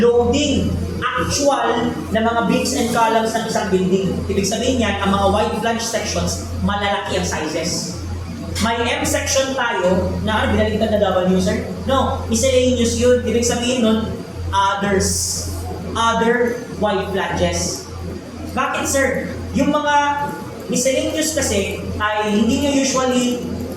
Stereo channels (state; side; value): identical; both; correlation 1.00